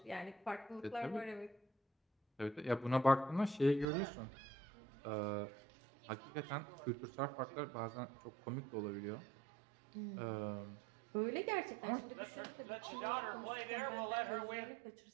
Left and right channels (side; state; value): left; drops out; at 3.9 s